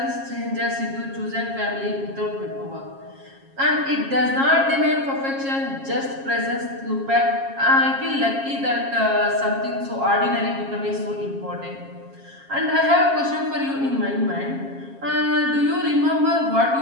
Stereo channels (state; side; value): late; left; 7.4 ms